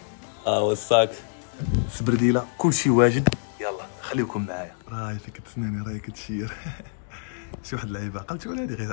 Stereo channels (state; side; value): silent; right; digital silence